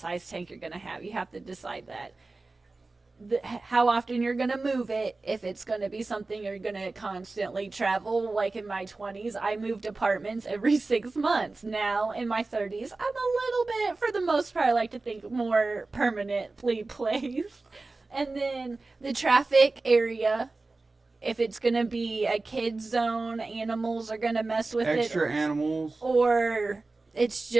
tank you're going to have. You have to decide that. How often you're going to move it, if it's going to be something you're going to constantly travel. Like in my 20s, I moved apartments every 6 months. Now, in my 30s, I'm a little bit, for the most part, I like to think more permanently placed. And then the traffic area. If it's going to be a kid zone, animals are going to mess with Extra animals. Or it's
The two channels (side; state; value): left; quieter; 3.5 dB